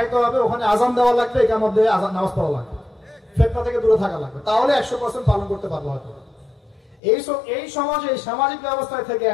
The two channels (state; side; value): drops out; right; at 7.0 s